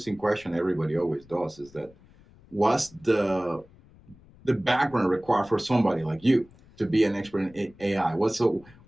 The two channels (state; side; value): noise; left; rumble, 26 dB below the sound